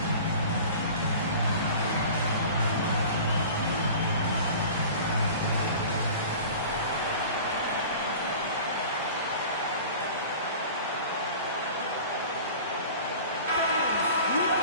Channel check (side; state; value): both; inverted; correlation -0.40